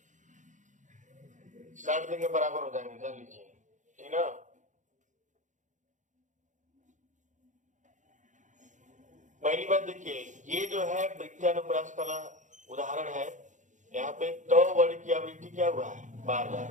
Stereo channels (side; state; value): left; late; 0.36 ms